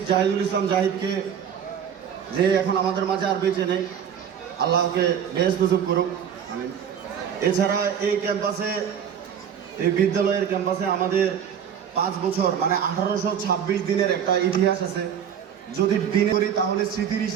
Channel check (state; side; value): quieter; left; 8.3 dB